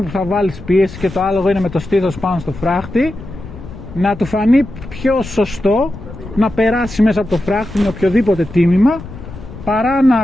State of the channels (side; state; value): left; noise; rumble, 13 dB below the sound